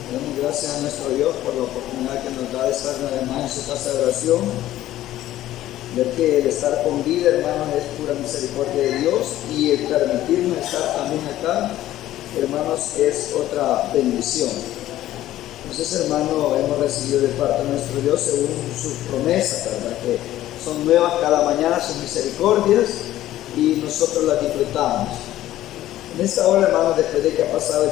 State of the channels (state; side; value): quieter; right; 14.0 dB